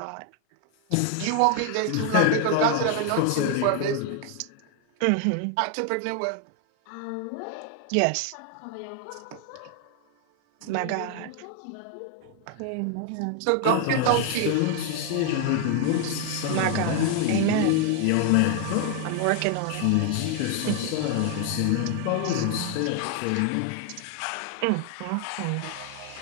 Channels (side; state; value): both; different; correlation 0.00